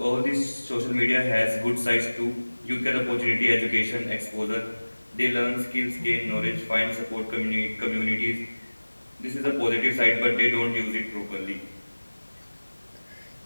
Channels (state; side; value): inverted; both; correlation -1.00